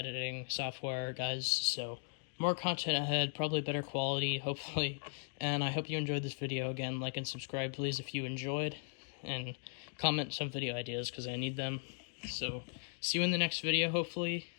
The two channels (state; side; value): silent; right; 53 dB below the other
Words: software, guys, so more content ahead, probably better quality, hopefully. And I hope you enjoyed this video. Again, like and subscribe, please, if you enjoyed. And comment some video ideas, because I need them. So, see you in the next video, hopefully.